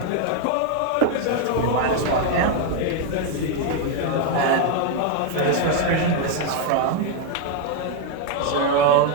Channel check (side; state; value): both; different; correlation 0.01